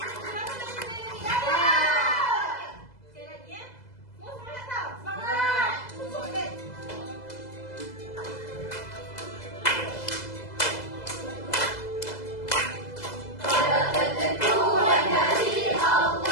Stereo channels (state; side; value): late; right; 2.0 ms